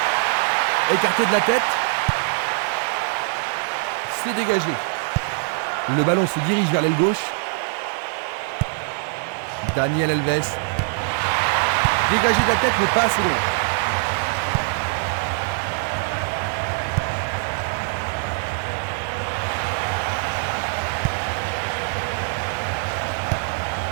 Écarté de la tête. C'est dégagé. Le ballon se dirige vers l'aile gauche. Daniel Alves. Dégagé de la tête, mais pas assez loin.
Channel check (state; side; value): silent; left; 60 dB below the other